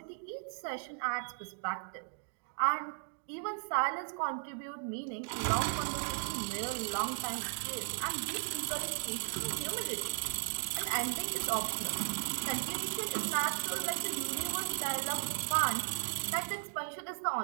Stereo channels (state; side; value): silent; left; digital silence